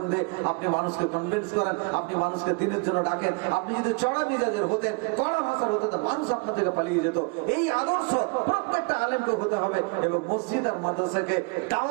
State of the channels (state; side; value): quieter; left; 31.6 dB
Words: দিয়ে আপনি মানুষকে কনভিন্স করেন, আপনি মানুষকে দিনের জন্য ডাকেন। আপনি যদি চড়া মিজাজের হতেন, কড়া ভাষার হতেন, মানুষ আপনার থেকে পালিয়ে যেত। এই আদর্শ প্রত্যেকটা আলেমকে হতে হবে এবং মসজিদ আর মাদ্রাসাকে